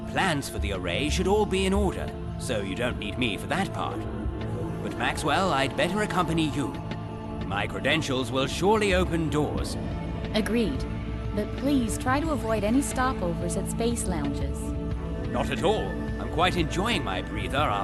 for the array should all be in order, so you don't need me for that part. But Maxwell, I'd better accompany you. My credentials will surely open doors. Agreed. But please try to avoid any stopovers at space lounges. Not at all. I'm quite enjoying my breather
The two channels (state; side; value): identical; both; correlation 1.00